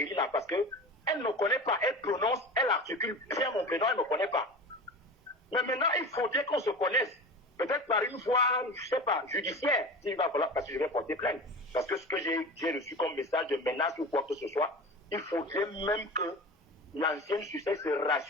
là, parce qu'elle ne me connaît pas, elle prononce, elle articule bien mon prénom, elle ne me connaît pas. Mais maintenant, il faudrait qu'on se connaisse. Peut-être par une voie, je ne sais pas, judiciaire, s'il va falloir, parce que je vais porter plainte. Parce que ce que j'ai reçu comme message de menace ou quoi que ce soit, il faudrait même que l'ancienne succès se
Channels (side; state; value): both; normal; correlation 0.32